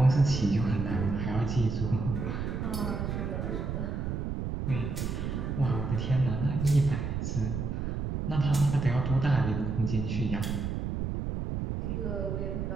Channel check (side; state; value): right; noise; rumble, 2 dB below the sound